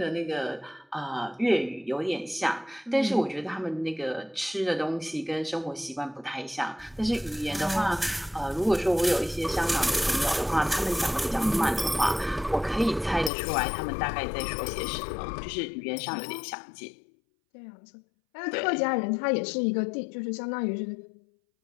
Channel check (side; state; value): right; drops out; at 13.3 s